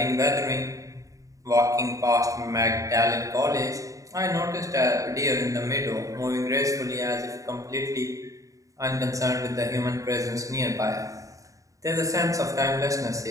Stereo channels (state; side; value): late; left; 0.16 ms